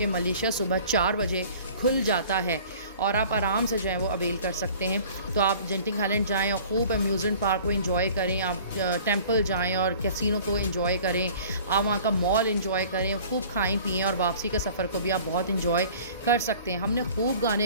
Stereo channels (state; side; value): inverted; both; correlation -0.48